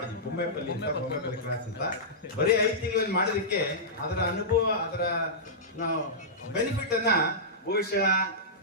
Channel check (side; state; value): both; normal; correlation -0.15